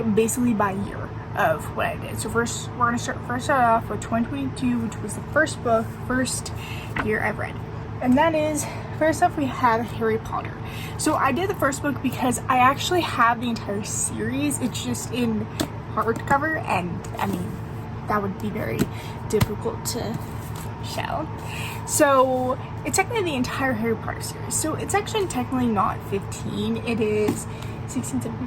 basically by year of what I did. So first we're gonna start off with 2022, which was the first year I've read, and that is, first off, we have Harry Potter. So I did the first book because I actually have the entire series. It's just in hardcover, and I mean that would be very difficult to show. So it's technically the entire Harry Potter series. So it's actually technically not 15. It is 16,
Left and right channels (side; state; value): both; identical; correlation 1.00